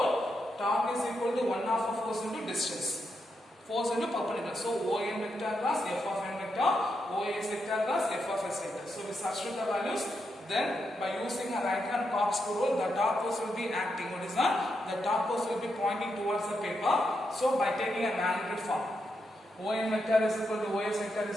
Torque is equal to 1 half of force into distance. Force into perpendicular. So ON vector plus F of n vector, OS vector plus F of s vector. So we substitute the values. Then by using a right hand corkscrew rule, the torque force will be acting. What is that? The torque force will be pointing towards the paper. So by taking a magnitude form, ON vector is equal to OS vector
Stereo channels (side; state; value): both; normal; correlation 0.83